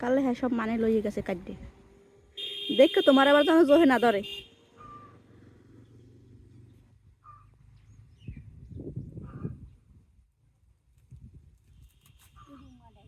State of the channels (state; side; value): identical; both; correlation 1.00